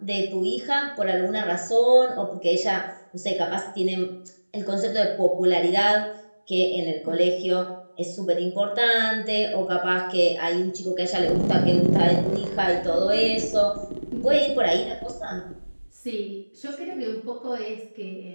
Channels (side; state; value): both; inverted; correlation -1.00